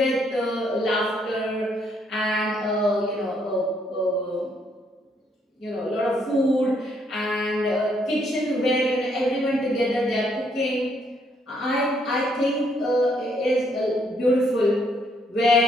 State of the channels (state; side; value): normal; both; correlation 0.71